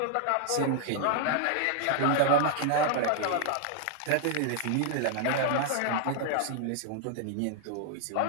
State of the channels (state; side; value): different; both; correlation 0.00